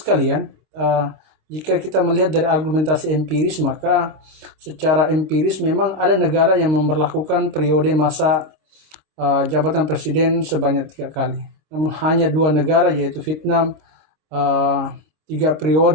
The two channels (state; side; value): late; left; 26 ms